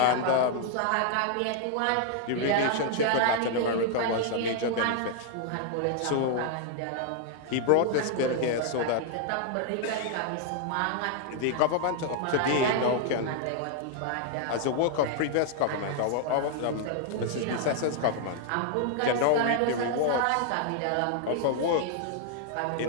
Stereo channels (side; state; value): both; different; correlation 0.00